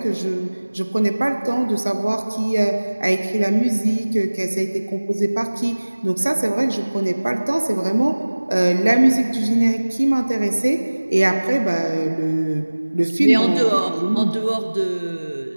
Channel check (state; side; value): inverted; both; correlation -1.00